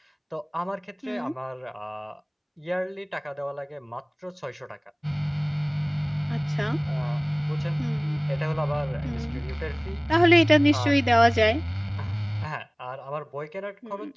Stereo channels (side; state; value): both; identical; correlation 1.00